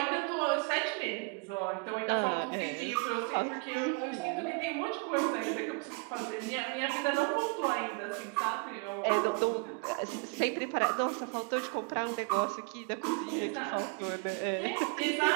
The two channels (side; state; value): left; quieter; 32.0 dB